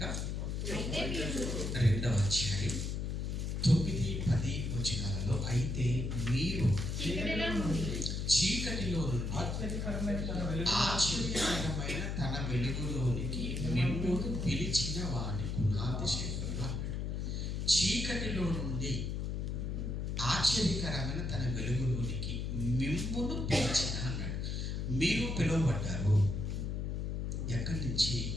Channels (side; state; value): left; noise; hum, 2 dB below the sound